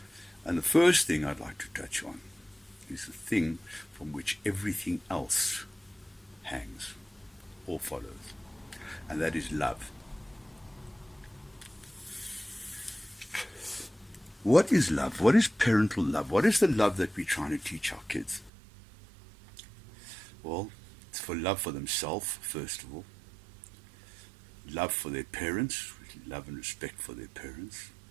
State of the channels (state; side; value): drops out; left; at 18.5 s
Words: And the first thing I'd like to touch on is the thing from which everything else hangs or follows, and that is love. What is love? What is parental love? What is the love that we're trying to teach our kids? Well, it's for love for themselves, first of all, love for their parents, love and respect for their parents,